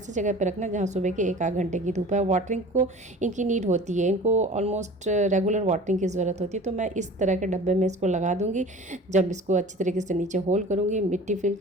जगह पर रखना जहाँ सुबह के 1 आध घंटे की धूप है। वाटरिंग को इनकी नीड होती है, इनको ऑलमोस्ट रेगुलर वाटरिंग की ज़रूरत होती है। तो मैं इस तरह के डब्बे में इसको लगा दूंगी। जब इसको अच्छी तरीके से नीचे होल करूंगी, मिट्टी फिल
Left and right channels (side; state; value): both; normal; correlation 0.42